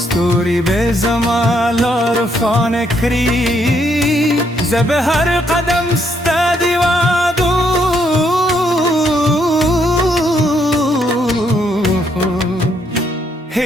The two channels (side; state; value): both; normal; correlation 0.73